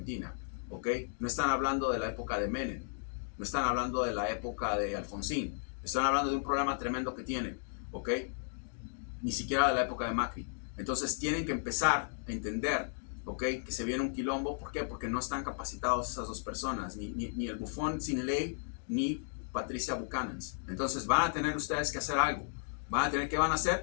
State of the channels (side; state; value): right; silent; digital silence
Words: ¿ok? No están hablando de la época de Menem, no están hablando de la época de Alfonsín, están hablando de un problema tremendo que tienen, ¿ok? Ni siquiera de la época de Macri. Entonces tienen que empezar a entender, ¿ok? Que se viene un quilombo. ¿Por qué? Porque no están capacitados esas dos personas, ni el bufón sin ley, ni Patricia Buchanan. Entonces van a tener ustedes que hacer algo. ¿Qué van a